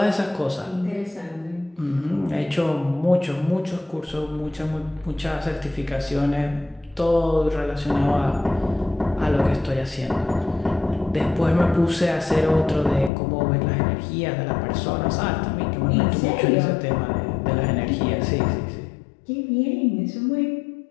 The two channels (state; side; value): drops out; right; at 13.1 s